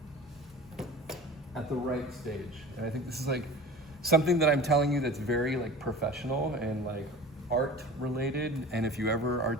at the right stage. And I think this is like something that I'm telling you that's very like professional and like art related. And if you ever are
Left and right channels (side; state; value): both; normal; correlation 0.37